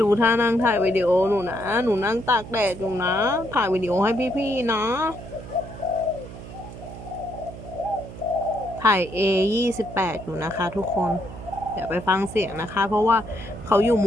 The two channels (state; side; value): noise; right; hum, 13 dB below the sound